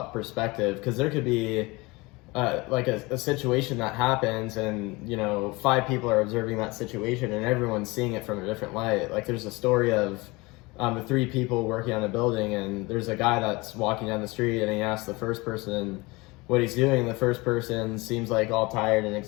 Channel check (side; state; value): right; quieter; 23.9 dB